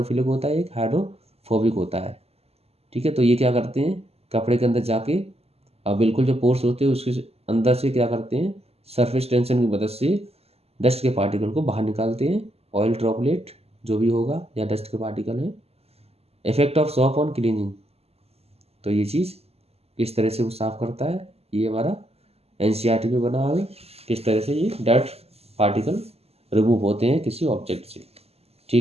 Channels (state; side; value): late; left; 0.29 ms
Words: होता है, एक हाइड्रोफोबिक होता है। ठीक है। तो ये क्या करते हैं, कपड़े के अंदर जाके और बिल्कुल जो पोर्स होते हैं उसके अंदर से क्या करते हैं, सरफेस टेंशन की मदद से डस्ट के पार्टिकल को बाहर निकालते हैं, ऑयल ड्रॉपलेट जो भी होगा या डस्ट के पार्टिकल है। Effect of shop on cleaning, तो ये चीज़ किस तरह से वो साफ करता है, ये हमारा NCERT में बना हुआ है, किस तरह से ये डर्ट पार्टिकल रिमूव होते हैं किसी ऑब्जेक्ट से।